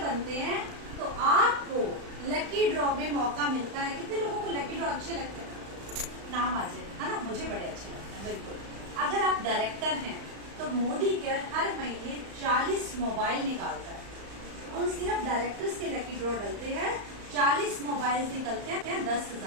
हैं तो आपको लकी ड्रॉ में मौका मिलता है। कितने लोगों को लकी ड्रॉ अच्छे लगते हैं? नाम आ जाए, है ना? मुझे बड़े अच्छे लगते हैं, बिल्कुल। अगर आप डायरेक्टर हैं तो मोदी केयर हर महीने 40 मोबाइल निकालता है। उन सिर्फ डायरेक्टर्स के लकी ड्रॉ डलते हैं, 40 मोबाइल निकलते हैं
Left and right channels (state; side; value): late; left; 35 ms